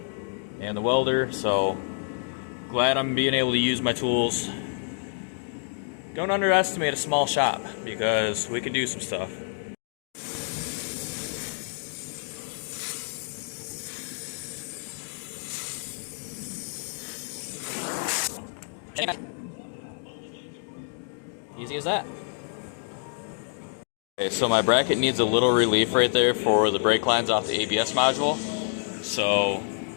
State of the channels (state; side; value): silent; right; 58 dB below the other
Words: and the welder, so glad I'm being able to use my tools. Don't underestimate a small shop because we can do some stuff. Easy as that. Okay, so my bracket needs a little relief right there for the brake lines off the ABS module. So